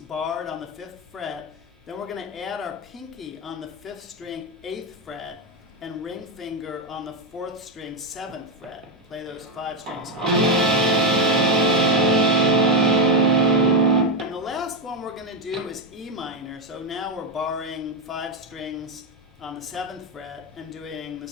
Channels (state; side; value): normal; both; correlation 0.09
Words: on the 5th fret. Then we're going to add our pinky on the 5th string, 8th fret, and ring finger on the 4th string, 7th fret. Play those 5 strings. And the last one we're going to do is E minor. So now we're barring 5 strings on the 7th fret and doing the